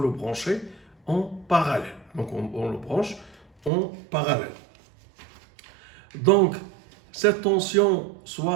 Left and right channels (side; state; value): left; drops out; at 3.7 s